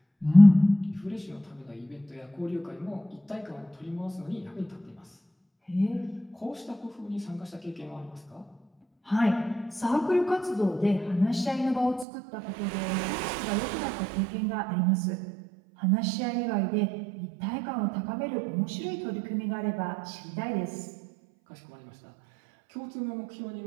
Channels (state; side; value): drops out; left; at 12.1 s